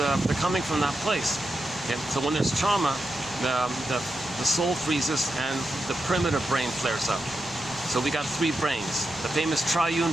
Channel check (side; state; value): left; noise; rumble, 25 dB below the sound